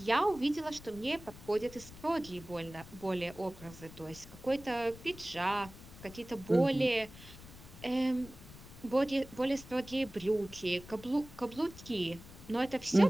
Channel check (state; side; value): noise; left; rumble, 17 dB below the sound